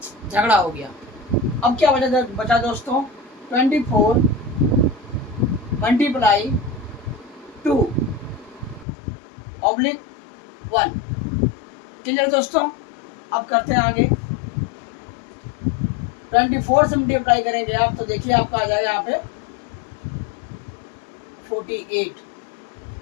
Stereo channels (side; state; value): right; drops out; at 8.8 s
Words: झगड़ा हो गया। अब क्या बचा दोस्तों, 24 मल्टीप्लाई 2 ऑब्लिक 1। क्लियर दोस्तों? अब करते हैं आगे। 24 से मल्टीप्लाई करेंगे आप तो देखिए आपका आ जाएगा यहाँ पे 48